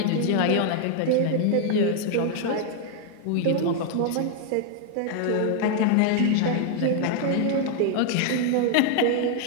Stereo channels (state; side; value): different; both; correlation 0.00